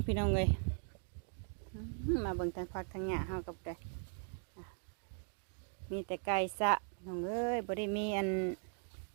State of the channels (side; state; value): left; silent; 52 dB below the other